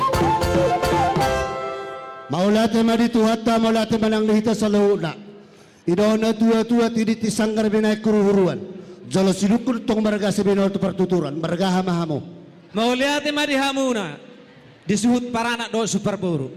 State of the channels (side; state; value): both; identical; correlation 1.00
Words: Maulate maditu hatta maulate manang lihita sa launa. Idona tua-tua tidit isanggar binay kuruhuruan. Jalo silukul tong marga sa binol to partuturan. Marga hamahamo. Maulate madihamuna. Disuhut parana do superburu.